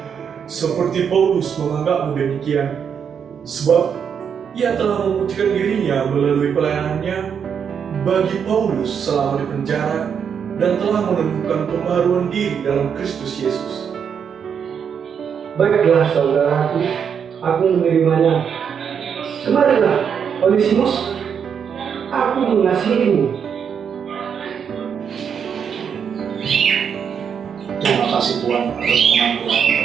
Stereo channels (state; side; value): quieter; left; 7.3 dB